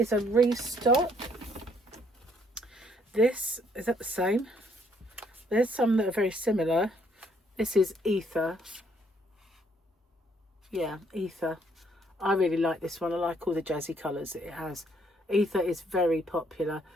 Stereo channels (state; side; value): normal; both; correlation 0.67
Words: a restock. This, is that the same? There's some that are very similar. This is Ether. Yeah, Ether. I really like this one. I like all the jazzy colours that it has. Ether is very popular.